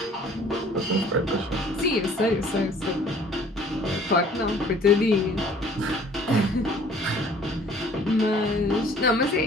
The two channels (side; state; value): both; normal; correlation 0.53